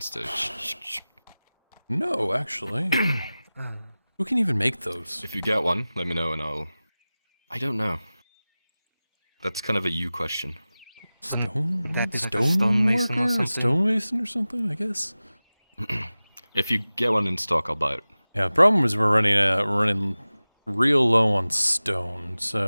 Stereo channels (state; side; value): inverted; both; correlation -0.97